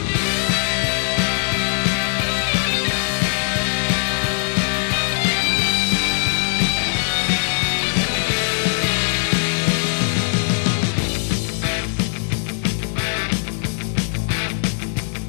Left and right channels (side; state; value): right; silent; digital silence